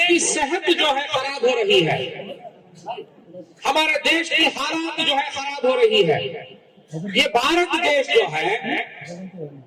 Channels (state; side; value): identical; both; correlation 1.00